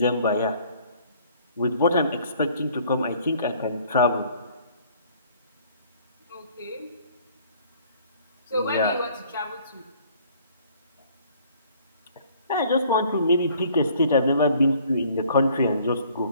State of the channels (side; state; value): both; inverted; correlation -0.57